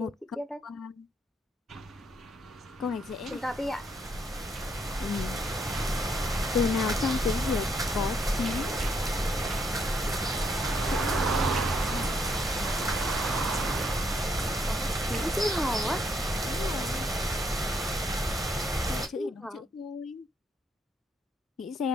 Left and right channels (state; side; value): normal; both; correlation 0.72